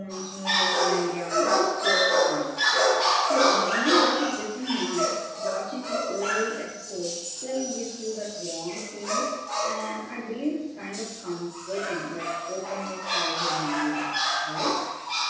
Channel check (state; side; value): identical; both; correlation 1.00